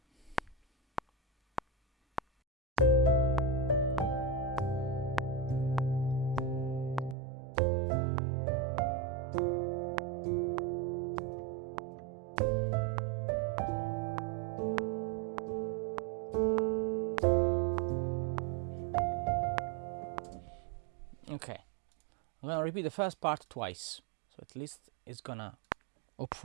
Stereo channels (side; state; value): left; drops out; at 7.2 s